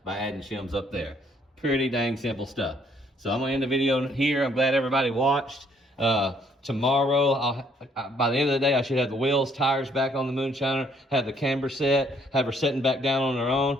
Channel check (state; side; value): normal; both; correlation 0.66